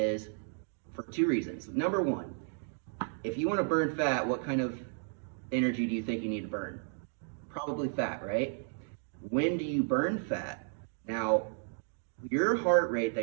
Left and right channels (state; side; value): silent; left; 56 dB below the other